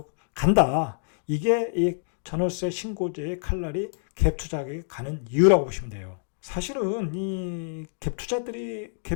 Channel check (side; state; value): right; silent; digital silence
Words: 간다. 이게 이 전월세 신고제의 칼날이 갭 투자에 가는 이유라고 보시면 돼요. 사실은 이